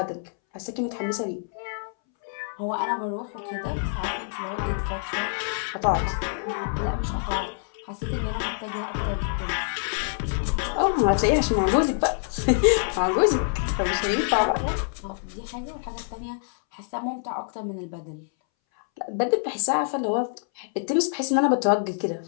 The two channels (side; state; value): right; silent; 61 dB below the other